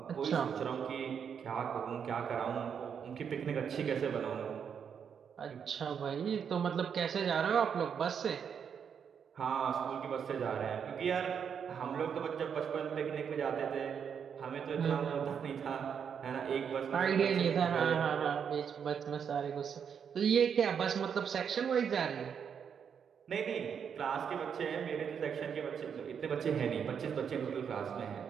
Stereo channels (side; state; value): left; quieter; 7.4 dB